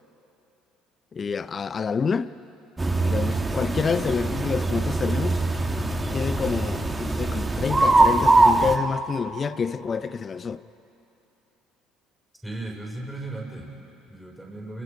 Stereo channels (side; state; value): both; normal; correlation 0.85